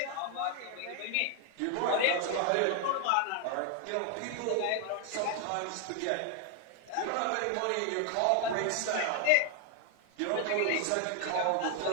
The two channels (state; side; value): different; both; correlation 0.00